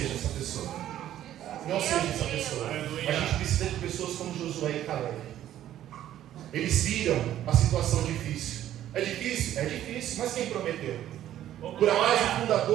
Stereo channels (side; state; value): left; quieter; 12.1 dB